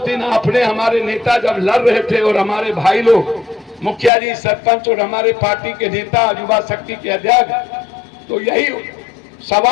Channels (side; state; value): right; drops out; at 4.1 s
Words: दिन आपने, हमारे नेता जब लड़ रहे थे और हमारे भाई लोग, मुखिया जी, सरपंच और हमारे पार्टी के नेता, युवा शक्ति के अध्यक्ष, तो यही